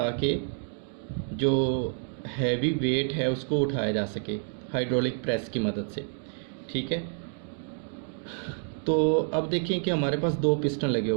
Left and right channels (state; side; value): silent; left; 59 dB below the other